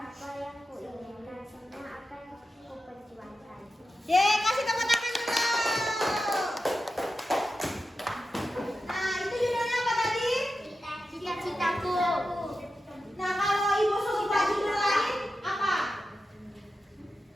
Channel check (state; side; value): normal; both; correlation 0.91